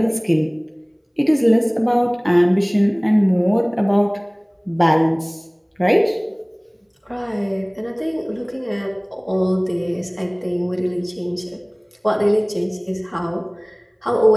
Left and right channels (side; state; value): both; identical; correlation 1.00